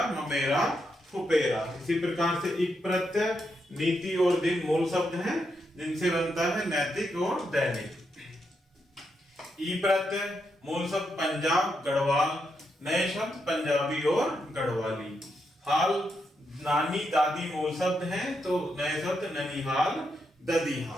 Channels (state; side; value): normal; both; correlation 0.82